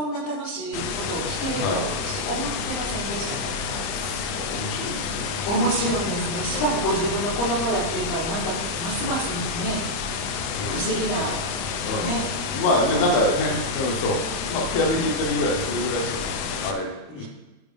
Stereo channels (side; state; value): right; late; 31 ms